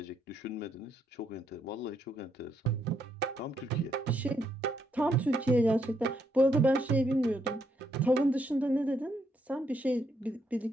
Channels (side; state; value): both; normal; correlation 0.75